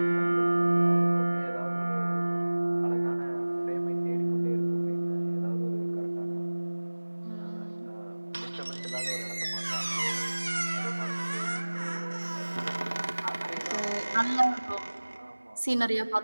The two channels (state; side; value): inverted; both; correlation -1.00